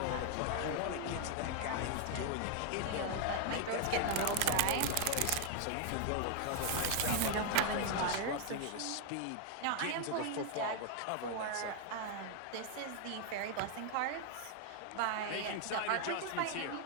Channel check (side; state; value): both; different; correlation 0.00